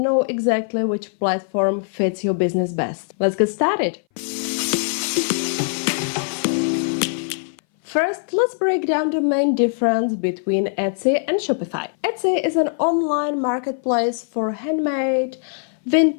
exactly which platform fits your business best. Let's get started. First, let's break down the main difference between Etsy and Shopify. Etsy is an online marketplace for handmade,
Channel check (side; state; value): right; silent; 60 dB below the other